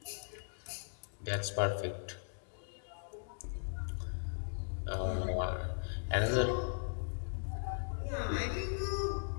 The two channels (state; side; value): silent; right; digital silence